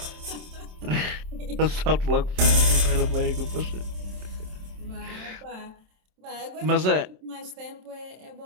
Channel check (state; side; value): late; left; 27 ms